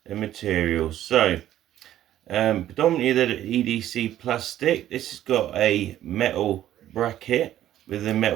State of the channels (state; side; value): quieter; left; 12.4 dB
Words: the materials. So predominantly the EDC plastic. This has got a metal bracket with the